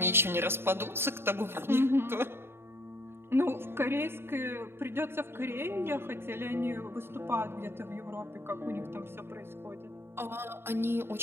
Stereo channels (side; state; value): left; late; 0.11 ms